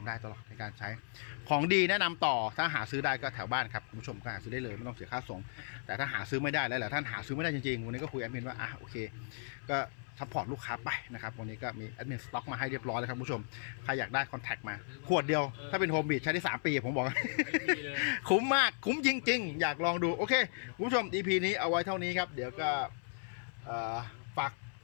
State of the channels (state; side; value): silent; right; 54 dB below the other